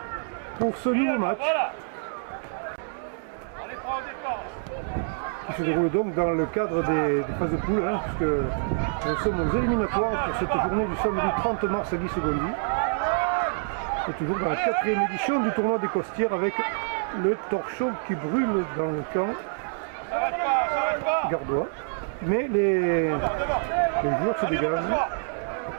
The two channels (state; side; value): silent; left; 61 dB below the other